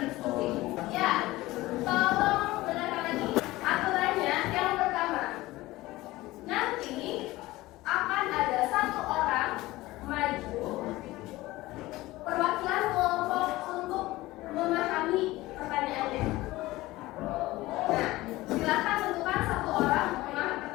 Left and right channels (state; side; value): quieter; right; 18.5 dB